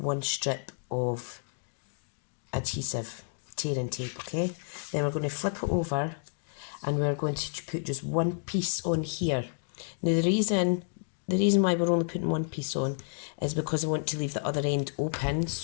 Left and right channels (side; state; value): right; silent; digital silence